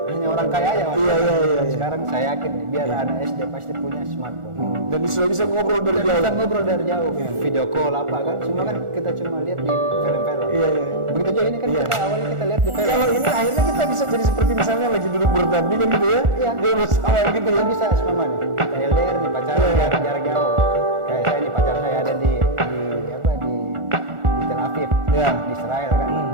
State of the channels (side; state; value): left; late; 1.4 ms